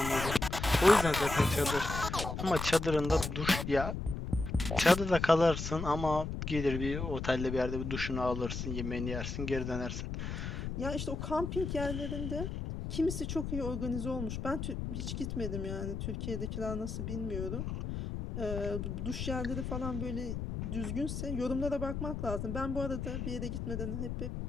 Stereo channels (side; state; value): left; noise; rumble, 4 dB below the sound